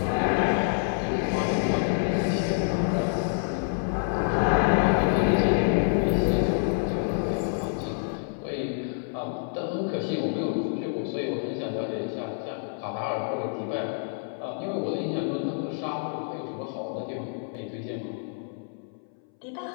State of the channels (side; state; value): right; silent; 60 dB below the other